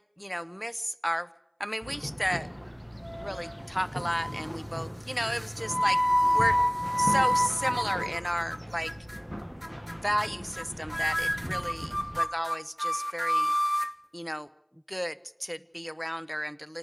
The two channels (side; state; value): both; identical; correlation 1.00